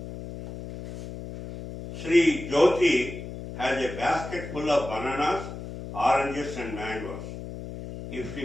Sri Jyoti has a basket full of bananas, oranges and mangoes. If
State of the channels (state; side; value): noise; left; hum, 10 dB below the sound